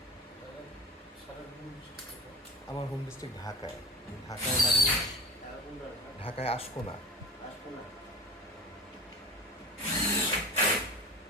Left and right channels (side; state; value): both; normal; correlation 0.32